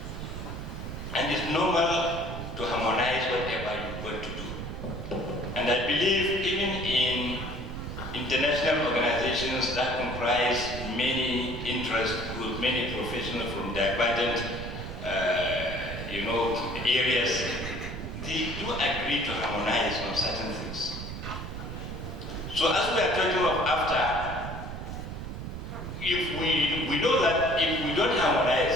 And it's normal to harmonize whatever you want to do. And I believe even in international organizations that comprise many interest groups, many professionals from divergent areas, they do agree to harmonize on certain things. So as we are talking of after, if we know that if we don't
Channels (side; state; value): right; noise; rumble, 7 dB below the sound